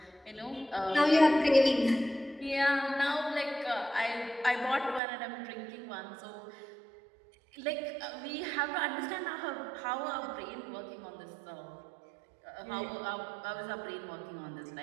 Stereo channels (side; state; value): left; drops out; at 5.0 s